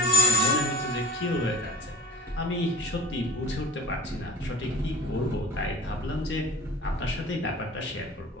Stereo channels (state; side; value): normal; both; correlation 0.41